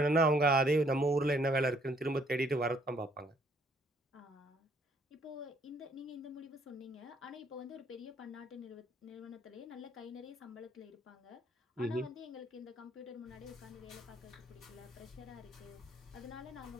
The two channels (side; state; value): both; normal; correlation 0.65